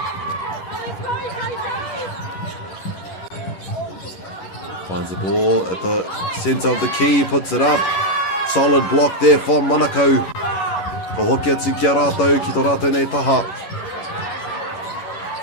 Finds the ball at the centre of the key, puts it up. Solid block there from Monaco. Ko hoki atu ki a rātou, ki tō rātou nei taha.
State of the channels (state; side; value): late; right; 11 ms